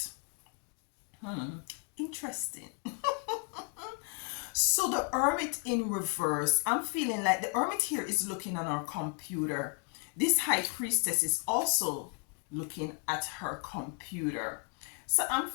Interesting. So the Hermit in reverse, I'm feeling like the Hermit here is looking on our computer. This High Priestess is also looking at her computer. So I'm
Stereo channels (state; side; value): quieter; right; 37.0 dB